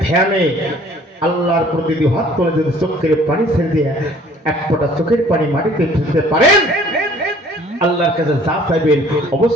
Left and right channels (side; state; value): both; normal; correlation 0.55